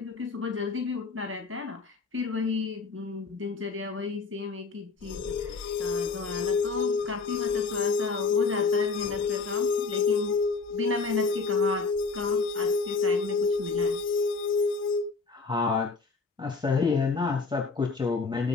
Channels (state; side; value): quieter; right; 4.4 dB